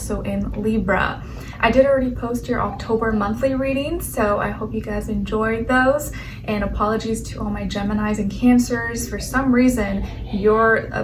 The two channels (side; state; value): both; identical; correlation 1.00